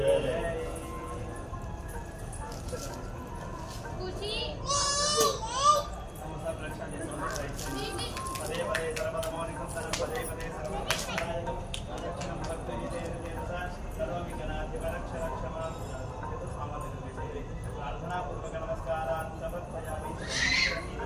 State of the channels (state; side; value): identical; both; correlation 1.00